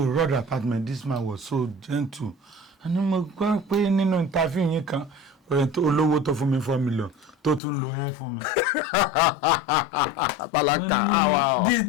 Rod apartment, this man was so gentle. And mo gbọ́ pé nínú interview yín kan olówó tó fún mi 4 million tó tún lo ẹ fún mi. Tálákà. Di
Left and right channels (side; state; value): right; drops out; at 7.6 s